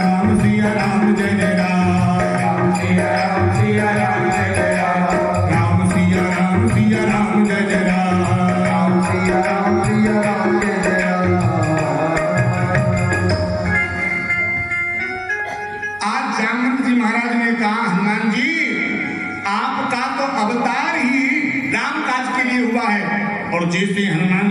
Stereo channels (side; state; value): both; identical; correlation 1.00